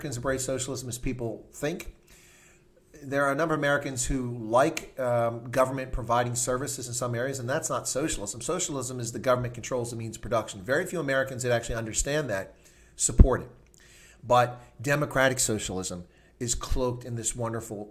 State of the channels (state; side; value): identical; both; correlation 1.00